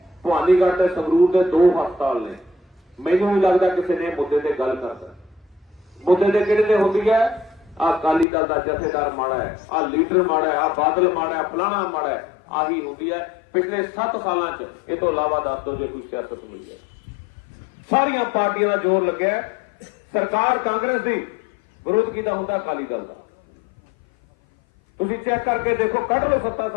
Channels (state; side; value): drops out; right; at 8.2 s